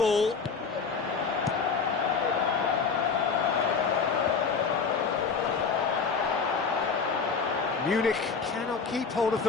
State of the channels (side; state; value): right; quieter; 5.4 dB